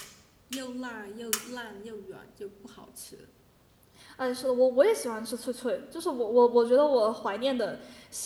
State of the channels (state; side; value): identical; both; correlation 1.00